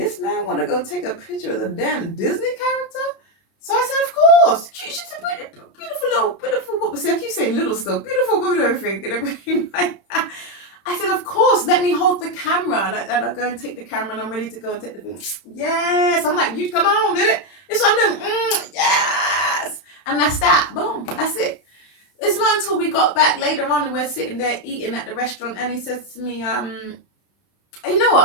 man want to go take a picture of the damn Disney character? So I said, of course. She's a beautiful woman. See, I keep saying little stuff. Beautiful woman and everything like that. I said, of course, let me hold the camera. And I go and take the camera, and I'm ready to go and take the thing. Yes. I'm like, you come on, did it? It's what I'm doing. Yes. And that's that. Boom. That's it. It's not until we got back later on and we're sitting there eating at the restaurant, and he says to me, you know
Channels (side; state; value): right; late; 31 ms